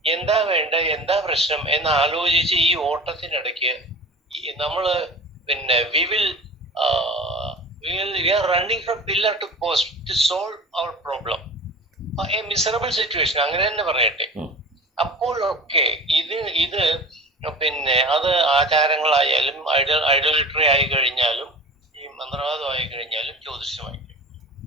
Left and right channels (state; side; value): normal; both; correlation 0.37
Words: എന്താ വേണ്ട, എന്താ പ്രശ്നം എന്ന് ആലോചിച്ച് ഈ ഓട്ടത്തിനിടയ്ക്ക് നമ്മള് we are running from pillar to post to solve our problem. A miserable situation, അങ്ങനെ തന്നെ പറയട്ടെ. അപ്പോഴൊക്കെ ഇത് അത് ആചാരങ്ങളായാലും ഐഡോലിറ്ററി ആയി കഴിഞ്ഞാലും ഈ മന്ത്രവാദമായി കഴിഞ്ഞാലും ജ്യോതിഷമായി,